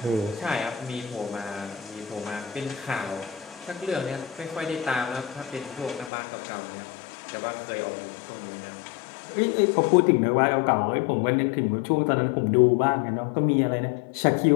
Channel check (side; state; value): right; drops out; at 6.1 s